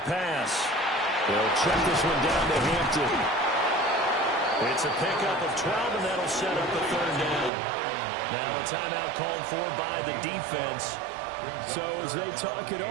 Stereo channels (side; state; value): left; drops out; at 7.5 s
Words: pass. They'll check this one down to Hampton. It's a pickup of 12, and that'll set up a third down. Now a timeout called for by the defense. So as they talk it